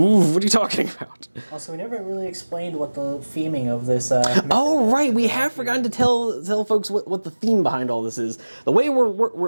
What are you talking about? Also, we never really explained what the theming of this. Oh right, we have forgotten to tell folks what the theme behind all this is. The way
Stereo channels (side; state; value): both; inverted; correlation -1.00